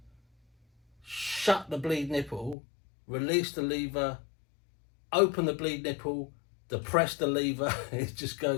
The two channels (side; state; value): right; drops out; at 2.6 s